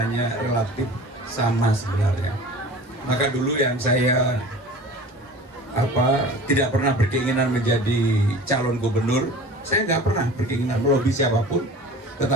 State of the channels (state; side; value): normal; both; correlation 0.40